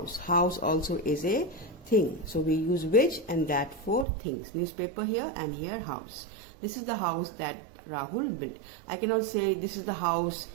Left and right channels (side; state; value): left; drops out; at 4.0 s